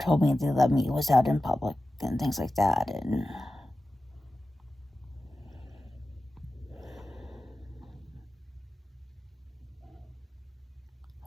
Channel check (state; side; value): normal; both; correlation 0.94